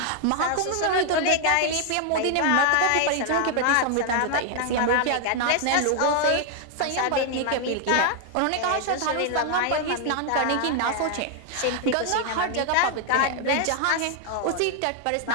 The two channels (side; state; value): both; different; correlation 0.00